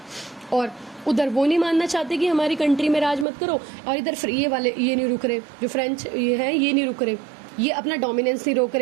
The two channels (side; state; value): left; drops out; at 3.2 s